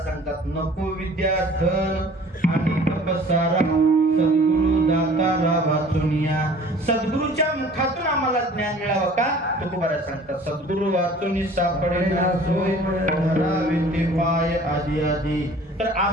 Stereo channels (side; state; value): both; normal; correlation 0.49